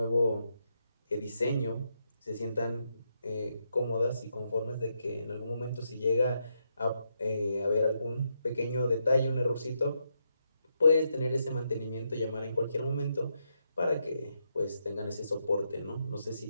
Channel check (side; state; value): both; inverted; correlation -0.81